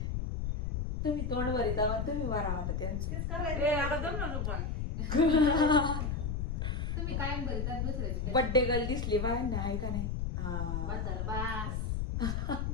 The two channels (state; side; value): noise; left; rumble, 1 dB below the sound